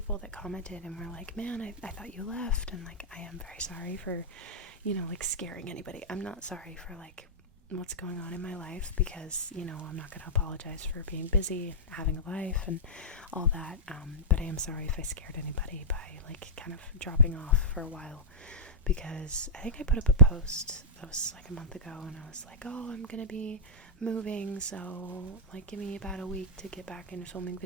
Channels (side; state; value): both; normal; correlation -0.13